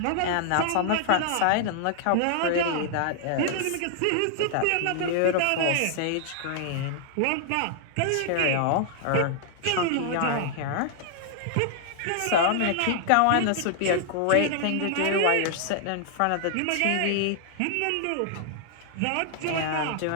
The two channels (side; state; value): both; different; correlation -0.01